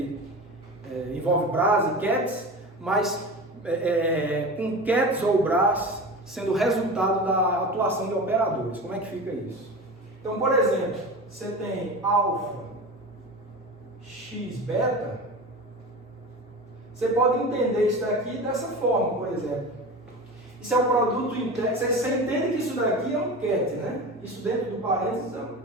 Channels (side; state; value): both; normal; correlation 0.30